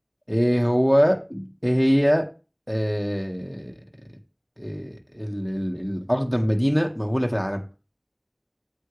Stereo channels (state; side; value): identical; both; correlation 1.00